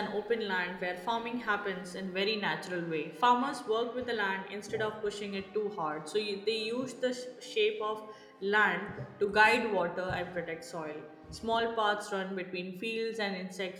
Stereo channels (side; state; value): both; identical; correlation 1.00